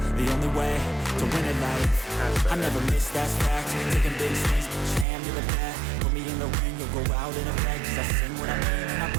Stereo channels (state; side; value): drops out; left; at 5.1 s